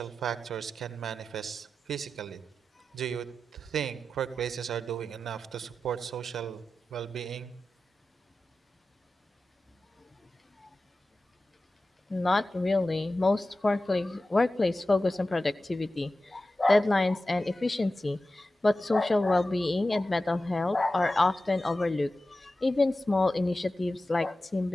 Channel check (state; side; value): normal; both; correlation 0.94